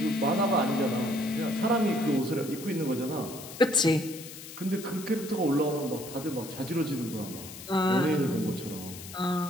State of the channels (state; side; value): noise; left; hiss, 13 dB below the sound